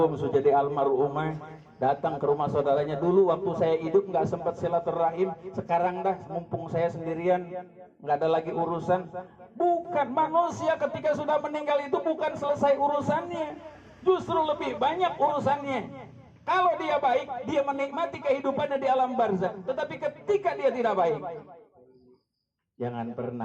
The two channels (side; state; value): both; identical; correlation 1.00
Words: sudah jadi almarhumah, datang ke rumah saudaranya. Dulu waktu saya hidup nggak sempat silaturahim, sekarang dah mumpung saya sendirian, nggak ada lagi urusan. Bukan, manusia ketika sudah meninggal itu bukan selesai urusannya, justru lebih banyak urusannya. Kalau dia baik, dia menikmati kehidupannya di alam barzakh. Tetapi ketika dia tidak baik, jangan